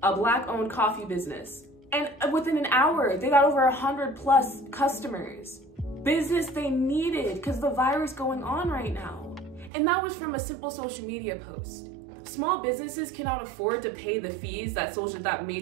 a Black-owned coffee business, and within an hour, they got over 100+ customers. Business they needed because the virus going on right now. And that was from a simple social media post. Small businesses cannot afford to pay the fees that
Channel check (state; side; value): drops out; left; at 9.7 s